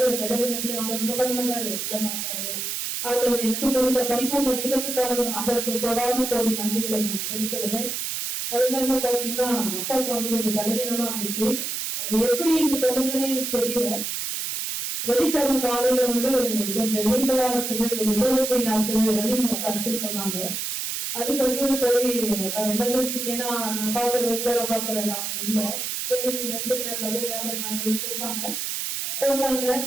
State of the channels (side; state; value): right; noise; hiss, 3 dB below the sound